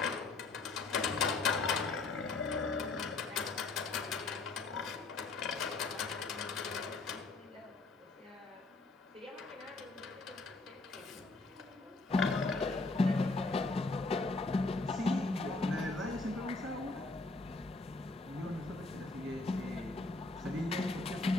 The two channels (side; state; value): right; quieter; 3.5 dB